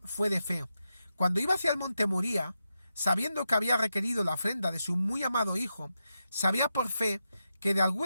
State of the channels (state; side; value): inverted; both; correlation -0.88